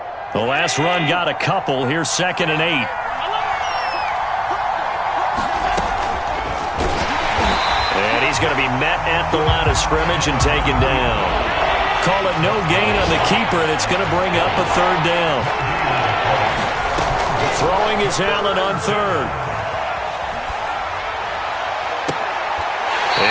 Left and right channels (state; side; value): identical; both; correlation 1.00